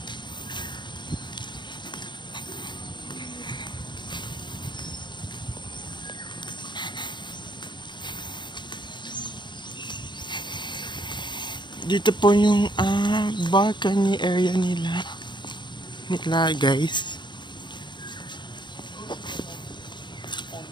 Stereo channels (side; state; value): right; late; 0.22 ms